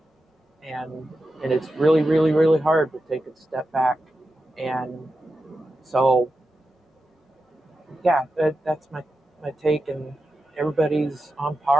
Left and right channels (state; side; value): normal; both; correlation 0.90